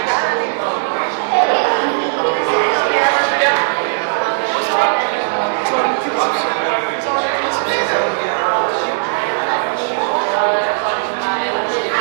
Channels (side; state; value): left; silent; digital silence